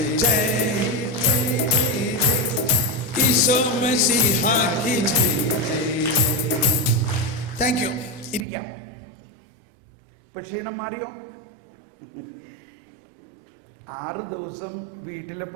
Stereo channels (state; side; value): drops out; left; at 8.5 s